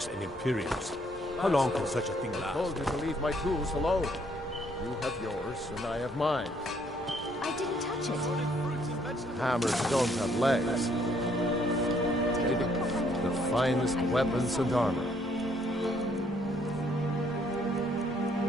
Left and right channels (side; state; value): both; normal; correlation 0.67